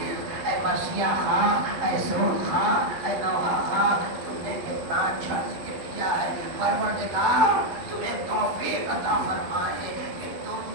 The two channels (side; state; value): left; late; 11 ms